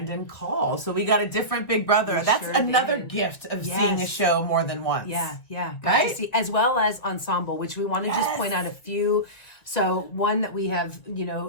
Call. So we got a different Big Brother. That's sure another did. gift of Yes. seeing a show more than once. Yeah, got Right? to see, as well as ensemble, which we want to just point out a few. So one that we have,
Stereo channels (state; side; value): late; right; 2.1 ms